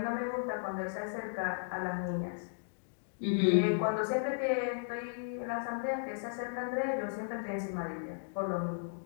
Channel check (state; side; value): silent; right; digital silence